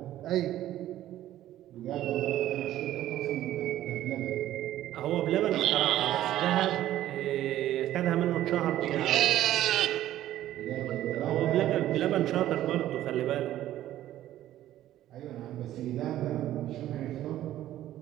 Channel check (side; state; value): left; quieter; 13.3 dB